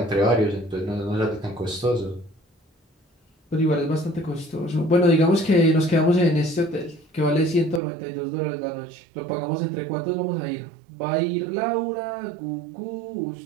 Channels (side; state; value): left; drops out; at 7.8 s